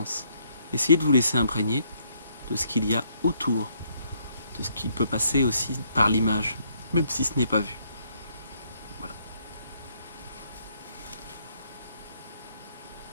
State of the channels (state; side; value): inverted; both; correlation -0.70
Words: Essayez de vous laisser imprégner de ce qu'il y a autour, de ce qui peut passer aussi par l'image, même si ce n'est pas vu. Voilà.